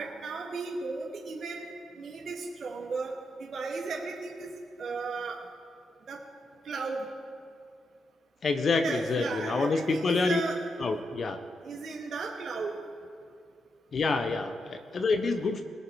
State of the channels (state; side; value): normal; both; correlation 0.83